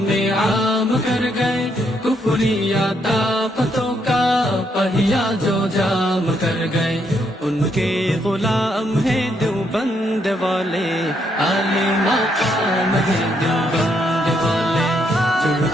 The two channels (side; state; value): both; normal; correlation 0.75